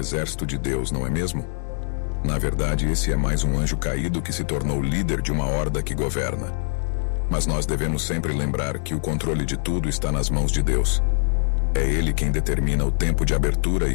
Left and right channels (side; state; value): right; silent; digital silence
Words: de Deus, não é mesmo? Na verdade, esse é mais um anjo caído que se tornou líder de uma horda que governa. Mas nós devemos sempre lembrar que o controle de tudo está nas mãos de Deus. É Ele quem determina o tempo de abertura e